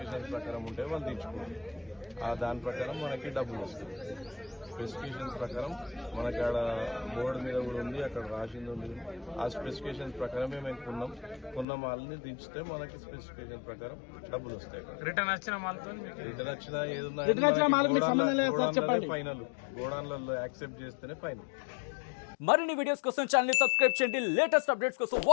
ప్రకారం ఉంటే వాళ్ళు తెచ్చుకోవాలి. దాని ప్రకారం మనకి డబ్బులు వస్తుంది. స్పెసిఫికేషన్స్ ప్రకారం మనకి ఆడ బోర్డు మీద కూడా ఉంది, అక్కడ రాసింది ఉంది. ఆ స్పెసిఫికేషన్స్ ప్రకారమే మేము కొన్న మాల్ని దించితే మనకి స్పెసిఫికేషన్ ప్రకారం డబ్బులు వస్తాయి. రిటర్న్ వచ్చిన రిటర్న్ వచ్చినా ఏదున్నా ఫైనల్ గోడాన్లలో యాక్సెప్ట్ చేస్తేనే ఫైనల్. మరిన్ని వీడియోస్ కోసం ఛానల్ ని సబ్స్క్రైబ్ చేయండి. లేటెస్ట్ అప్డేట్స్ కోసం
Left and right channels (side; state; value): right; drops out; at 11.7 s